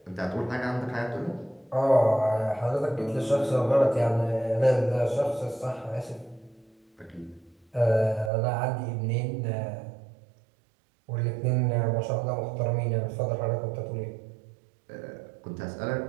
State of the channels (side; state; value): left; drops out; at 8.3 s